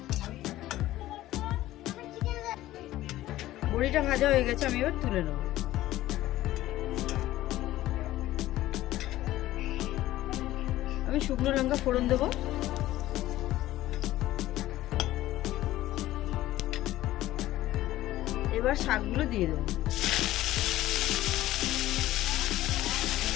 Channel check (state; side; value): quieter; right; 15.2 dB